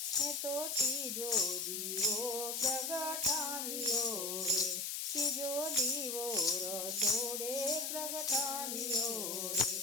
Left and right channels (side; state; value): left; noise; hiss, 2 dB below the sound